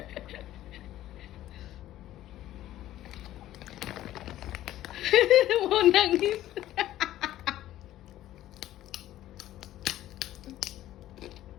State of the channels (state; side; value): quieter; right; 13.8 dB